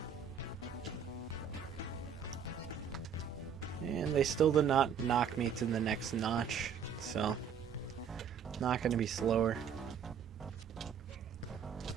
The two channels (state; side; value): quieter; left; 7.3 dB